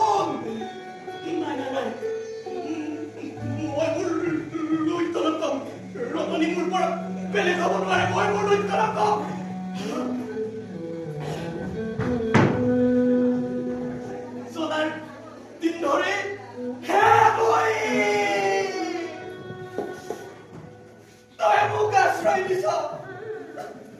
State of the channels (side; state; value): both; identical; correlation 1.00